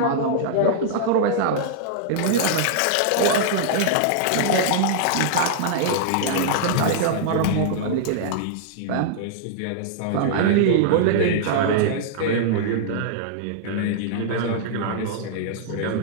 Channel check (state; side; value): different; both; correlation -0.01